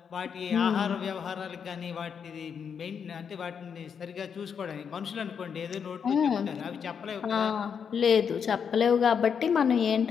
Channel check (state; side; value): quieter; right; 7.0 dB